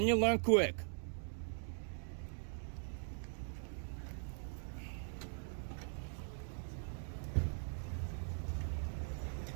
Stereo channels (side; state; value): left; silent; 50 dB below the other